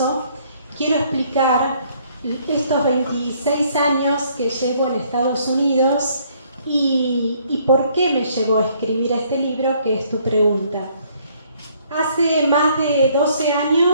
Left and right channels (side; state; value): both; inverted; correlation -0.64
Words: quiero explicar estos 26 años que llevo en Estados Unidos y por qué me llevó a escribir este libro, que es tu pregunta. Hace más de 12